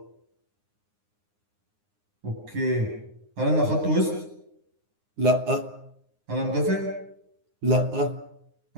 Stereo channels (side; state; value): left; late; 9.7 ms